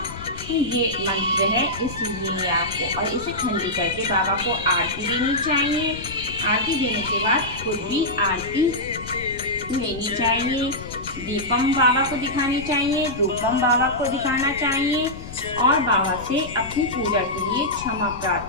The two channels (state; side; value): noise; left; rumble, 13 dB below the sound